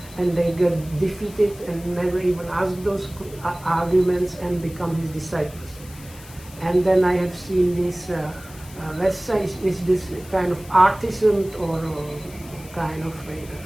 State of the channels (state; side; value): noise; left; hiss, 20 dB below the sound